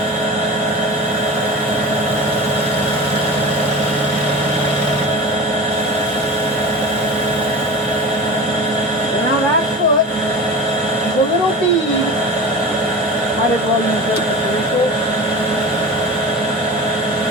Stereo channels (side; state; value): both; normal; correlation 0.32